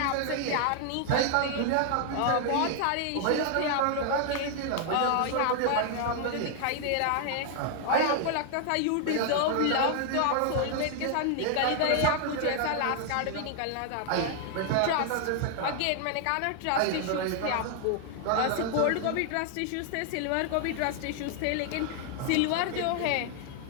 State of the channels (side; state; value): both; different; correlation 0.00